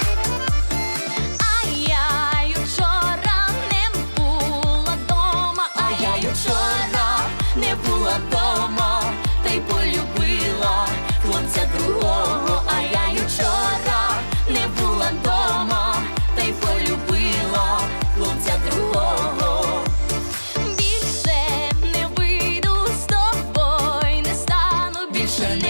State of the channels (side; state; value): both; inverted; correlation -1.00